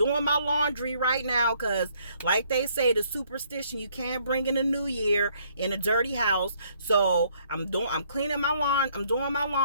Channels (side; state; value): both; inverted; correlation -0.66